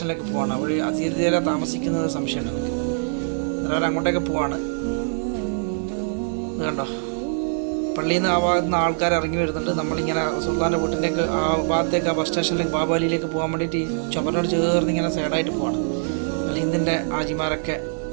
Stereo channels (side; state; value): left; silent; 59 dB below the other